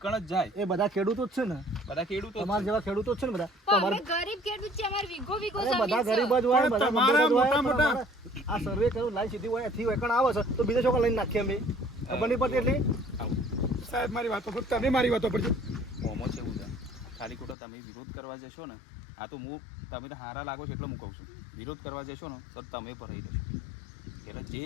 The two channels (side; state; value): right; drops out; at 17.6 s